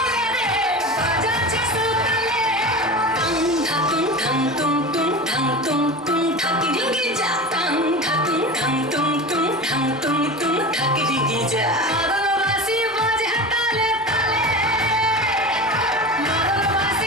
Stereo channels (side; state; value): both; normal; correlation 0.29